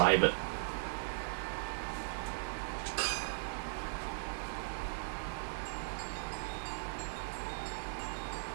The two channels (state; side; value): silent; left; digital silence